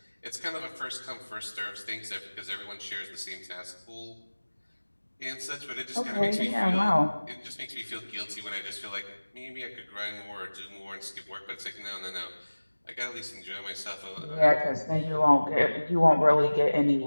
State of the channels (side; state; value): both; inverted; correlation -1.00